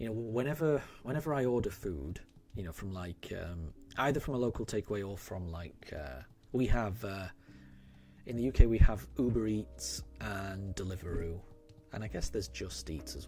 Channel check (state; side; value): identical; both; correlation 1.00